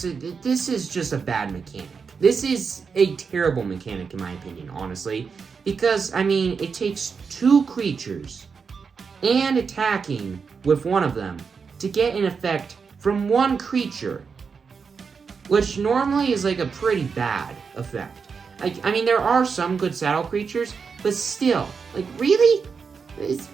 this is just a bad mechanic. This is a terrible mechanic in my opinion, honestly, because, I mean, it takes 2 creatures and attacking with one of them to get an effect from one creature, which normally is like a pretty bad effect. Like, I mean, there are some good saddle creatures, but still, like, really?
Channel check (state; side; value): quieter; left; 5.6 dB